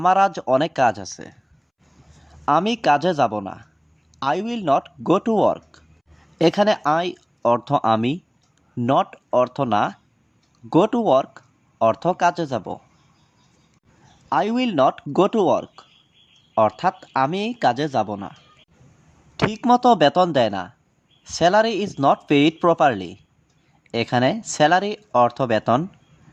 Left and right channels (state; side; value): identical; both; correlation 1.00